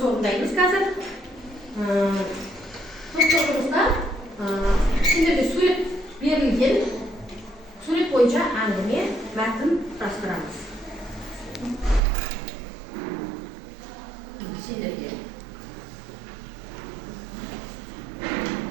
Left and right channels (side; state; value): left; drops out; at 12.0 s